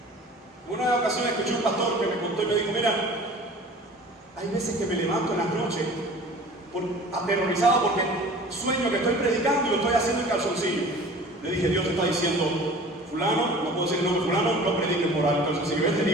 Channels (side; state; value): both; normal; correlation 0.43